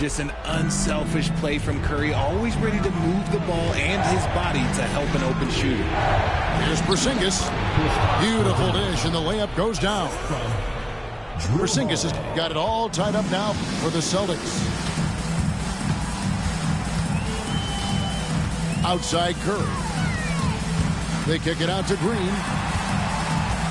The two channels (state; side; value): identical; both; correlation 1.00